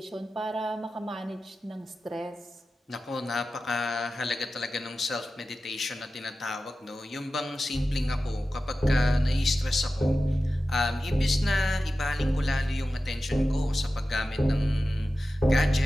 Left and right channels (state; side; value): normal; both; correlation 0.94